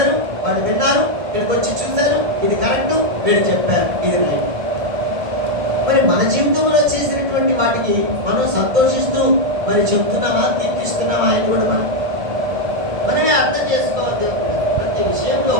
వాళ్ళు విన్నారు, ఇక్కడికి వచ్చి చూశారు, ఇది కరెక్టు, వీళ్ళు చెప్పారు, ఇది రైట్. మరి మన జీవితంలో చేసినటువంటి వాటికి మనం సంతోషిస్తూ మరి చెప్తున్నామా, కీర్తిస్తున్నామా అని కూడా మనమే అర్థం చేసుకోవాలి. దేవుడు ప్రతి విషయంలో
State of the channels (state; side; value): late; left; 1.7 ms